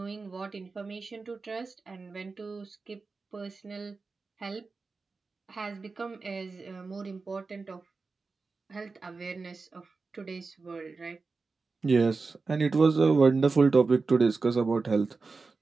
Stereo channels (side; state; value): left; quieter; 4.2 dB